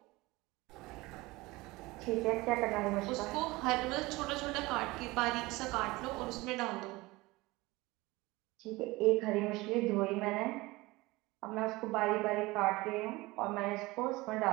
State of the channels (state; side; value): quieter; left; 21.3 dB